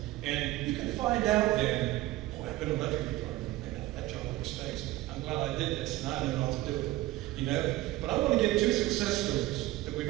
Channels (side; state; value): left; quieter; 17.1 dB